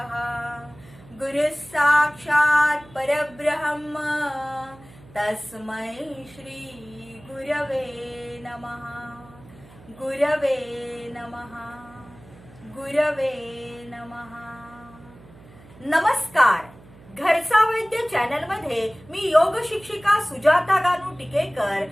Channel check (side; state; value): right; noise; hum, 22 dB below the sound